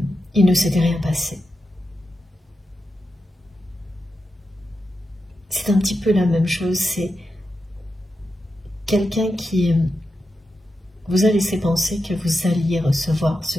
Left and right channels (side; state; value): both; normal; correlation 0.89